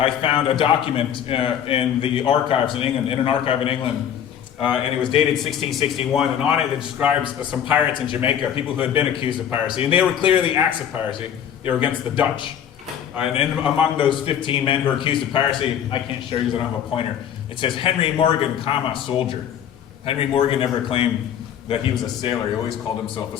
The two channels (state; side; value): quieter; right; 9.3 dB